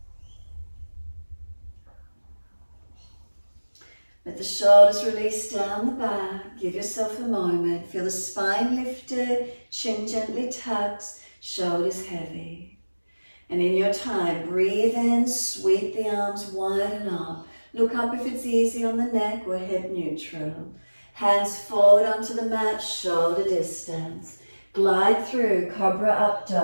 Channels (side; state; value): both; inverted; correlation -1.00